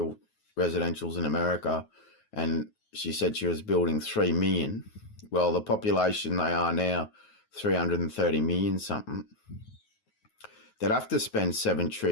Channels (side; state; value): right; late; 9.3 ms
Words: in America, and she said she was building 3 million. Well, the population they are now, 330 million something. They'd have to spend 7